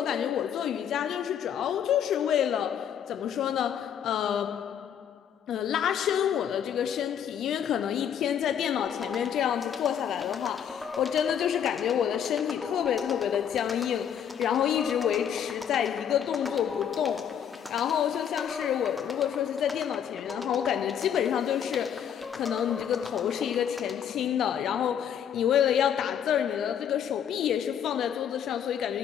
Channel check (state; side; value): quieter; right; 8.8 dB